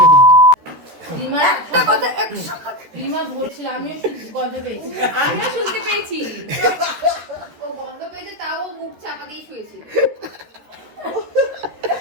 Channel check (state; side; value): late; left; 13 ms